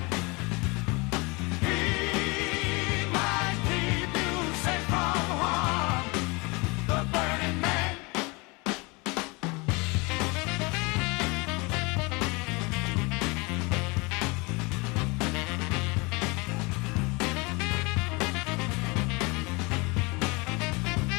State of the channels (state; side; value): quieter; right; 27.3 dB